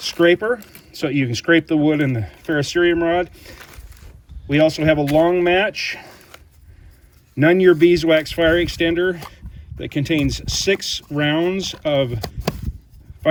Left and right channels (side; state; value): both; identical; correlation 1.00